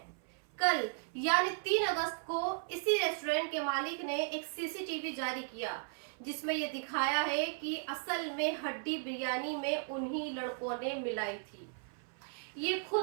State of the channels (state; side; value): silent; left; 54 dB below the other